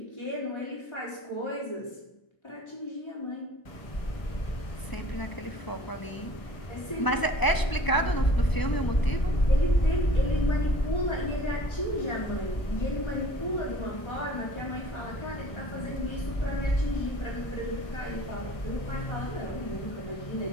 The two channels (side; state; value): right; late; 1.0 ms